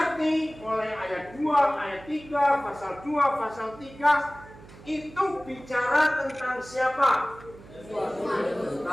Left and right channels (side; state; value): right; noise; hum, 20 dB below the sound